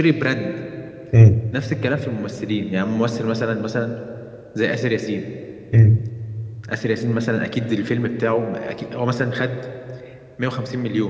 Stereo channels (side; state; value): both; identical; correlation 1.00